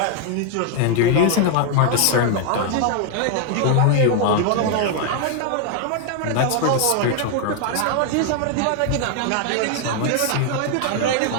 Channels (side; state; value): both; different; correlation 0.00